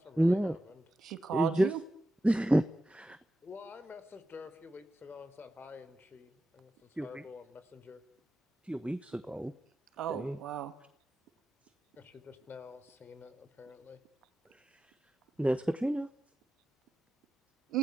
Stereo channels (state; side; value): normal; both; correlation 0.91